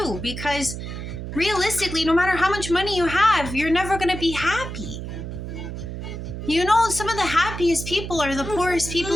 because realistically, no matter how much money you have, you're never going to be happy. Some of the happiest people are the poorest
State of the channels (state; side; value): noise; right; hum, 7 dB below the sound